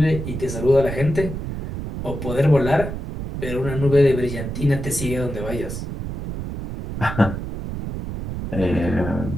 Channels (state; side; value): noise; right; rumble, 6 dB below the sound